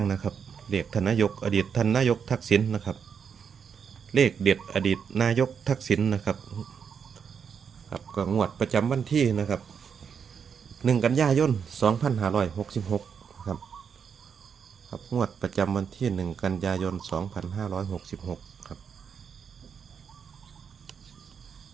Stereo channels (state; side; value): quieter; left; 6.9 dB